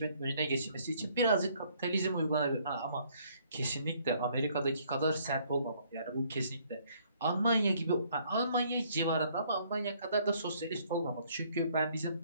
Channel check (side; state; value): both; inverted; correlation -0.64